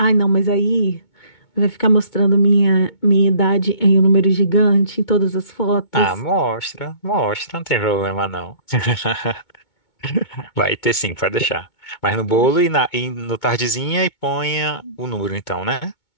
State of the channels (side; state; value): right; late; 2.2 ms